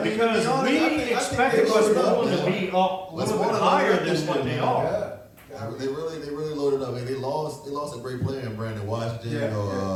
because we expected Westmoreland to be up a little bit higher than what they are. Yeah. They really loaded up. I mean, they lost a great player in Brandon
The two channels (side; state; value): both; identical; correlation 1.00